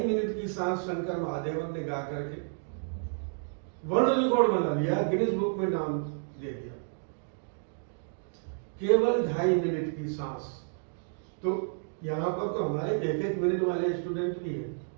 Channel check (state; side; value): silent; left; digital silence